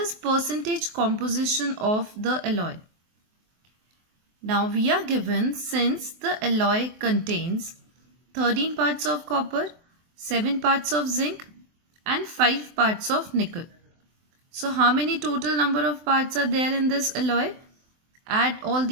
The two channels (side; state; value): left; late; 23 ms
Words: percentage composition of the alloy? Now we are given, since the alloy contains 13 parts of copper, 7 parts of zinc and 5 parts of nickel. So how many total number of parts are there in this alloy? Add all